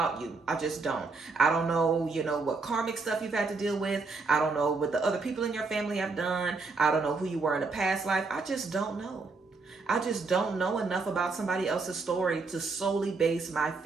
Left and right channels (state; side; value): quieter; left; 4.1 dB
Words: you. I just don't. I don't know, what karmic stuff you've had to deal with. I don't know what the other people in your family have done. I don't know who you were in a past life. I just don't know. I just don't know enough about somebody else's story to solely base my